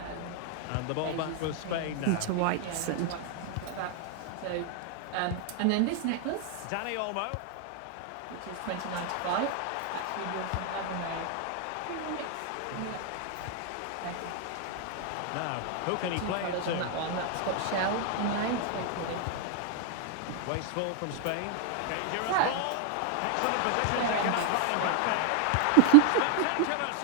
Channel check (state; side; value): different; both; correlation 0.01